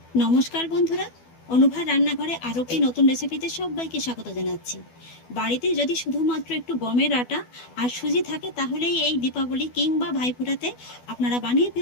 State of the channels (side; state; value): right; late; 12 ms